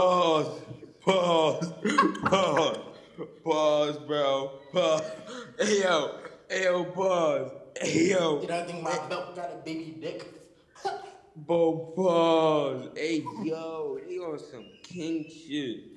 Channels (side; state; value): both; identical; correlation 1.00